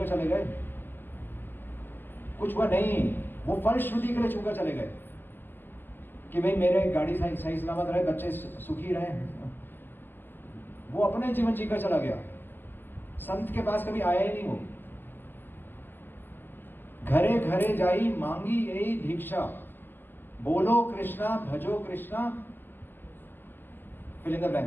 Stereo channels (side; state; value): right; late; 0.097 ms